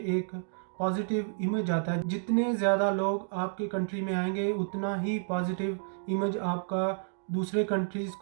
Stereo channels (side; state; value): left; silent; digital silence